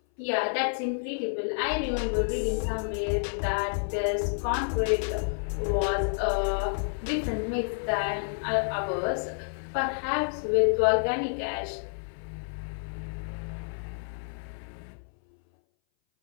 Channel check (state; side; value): silent; right; 58 dB below the other